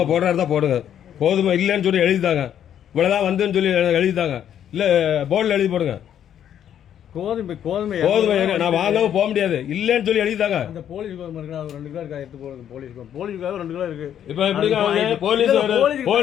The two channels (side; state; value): right; quieter; 9.8 dB